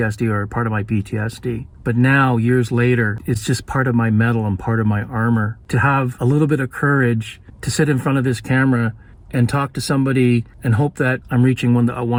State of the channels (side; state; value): both; identical; correlation 1.00